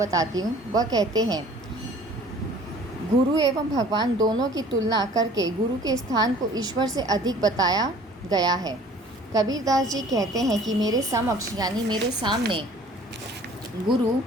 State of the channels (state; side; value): normal; both; correlation 0.50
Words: हूँ। वह कहते हैं, गुरु एवं भगवान दोनों की तुलना करके गुरु के स्थान को ईश्वर से अधिक बताया गया है। कबीरदास जी कहते हैं कि मेरे समक्ष यानी मेरे सामने गुरु